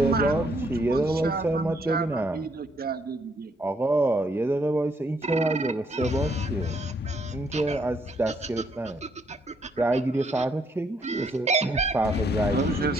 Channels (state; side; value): normal; both; correlation 0.71